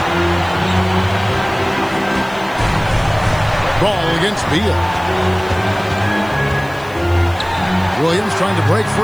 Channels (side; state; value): left; noise; hiss, 24 dB below the sound